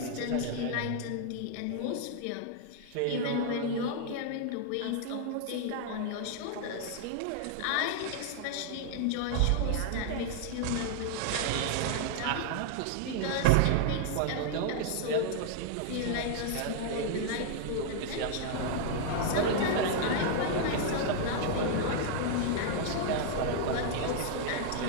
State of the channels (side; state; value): both; different; correlation 0.00